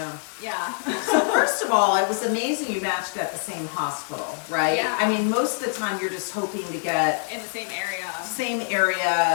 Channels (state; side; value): silent; right; 61 dB below the other